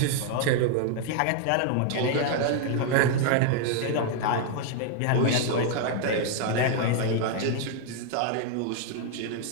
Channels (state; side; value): different; both; correlation 0.00